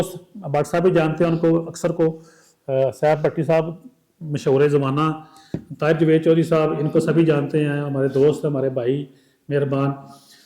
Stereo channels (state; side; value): identical; both; correlation 1.00